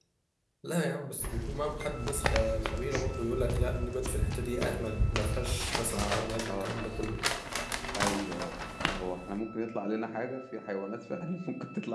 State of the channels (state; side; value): identical; both; correlation 1.00